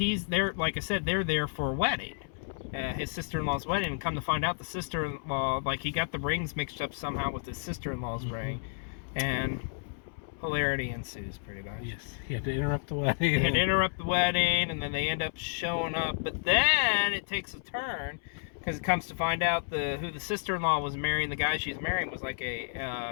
there, like I said, they're there for a wedding, his sister-in-law's wedding, and come to find out the sister-in-law, like he got the rings mixed up somehow with his sister-in-law's ring, and hilarity ensues pretty much. Yes, he had to interrupt the wedding. He had to interrupt the wedding, and then they end up showing up, but then it takes a turn, because it comes to find out who the sister-in-law was marrying, the guy she's marrying was like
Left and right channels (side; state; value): right; silent; 57 dB below the other